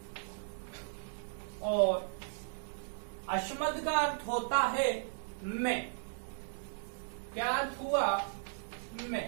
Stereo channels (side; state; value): left; silent; 54 dB below the other